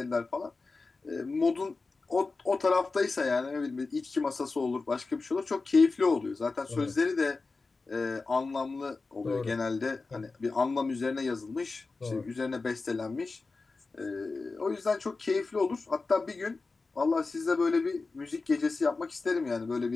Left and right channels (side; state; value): right; quieter; 3.9 dB